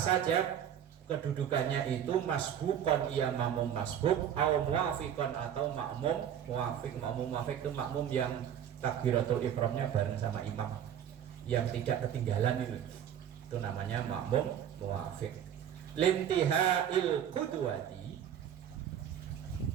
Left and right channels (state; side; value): quieter; left; 9.5 dB